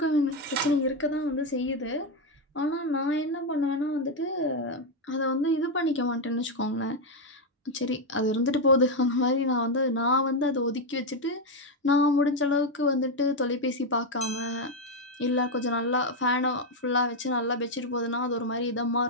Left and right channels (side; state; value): both; normal; correlation 0.05